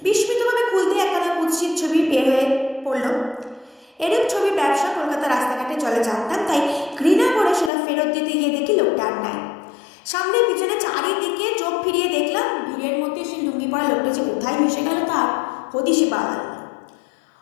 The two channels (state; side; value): drops out; right; at 7.7 s